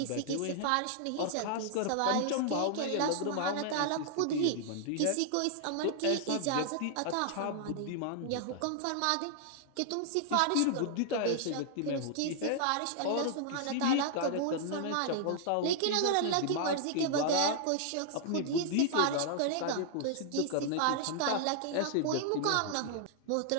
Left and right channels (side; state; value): both; different; correlation 0.00